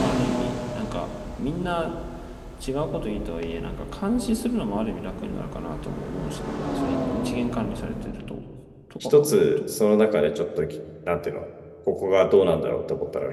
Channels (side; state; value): both; identical; correlation 1.00